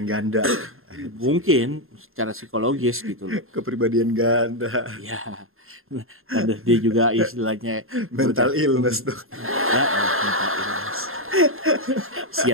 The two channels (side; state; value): left; late; 0.61 ms